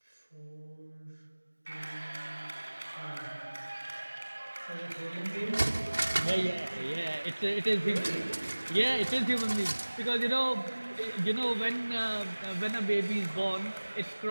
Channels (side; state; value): both; inverted; correlation -1.00